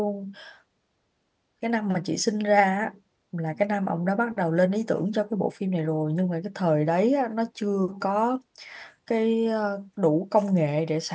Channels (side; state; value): both; identical; correlation 1.00